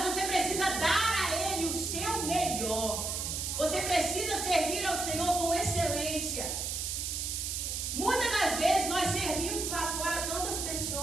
você precisa dar a Ele o seu melhor. Você precisa servir ao Senhor com excelência. Muitas das vezes nós servimos lá fora tantas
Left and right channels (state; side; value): noise; right; hiss, 2 dB below the sound